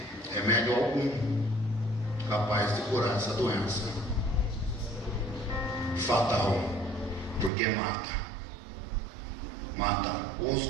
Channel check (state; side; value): drops out; left; at 7.5 s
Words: remédio algum capaz de curar essa doença. Fatal, porque mata o